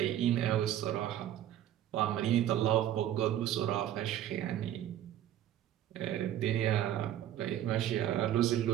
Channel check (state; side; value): quieter; left; 11.7 dB